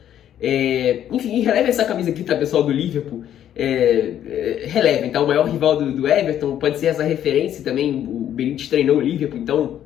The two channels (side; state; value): right; quieter; 10.7 dB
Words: Enfim, releva essa camisa aqui, tá, pessoal, do Liverpool. Relevem, tá? O maior rival do Everton pode ser essa referência também. O Benítez treinou o Liverpool, então,